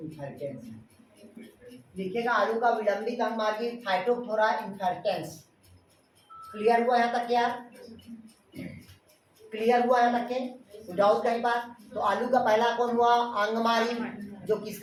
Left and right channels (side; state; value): both; identical; correlation 1.00